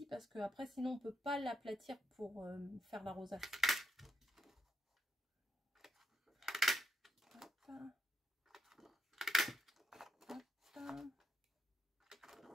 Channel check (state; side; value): normal; both; correlation 0.80